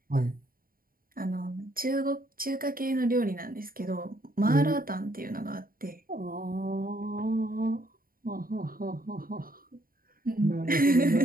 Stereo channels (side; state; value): left; late; 0.42 ms